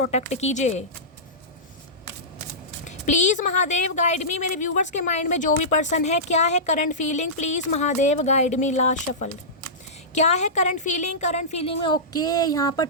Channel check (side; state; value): both; normal; correlation -0.16